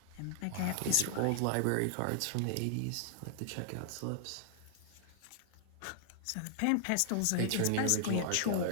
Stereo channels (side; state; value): both; different; correlation -0.01